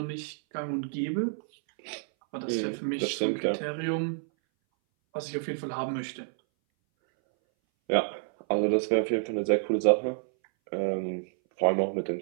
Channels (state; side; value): silent; left; 59 dB below the other